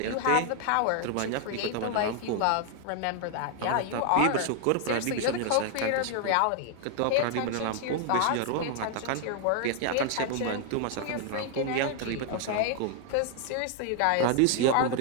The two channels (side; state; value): both; different; correlation 0.00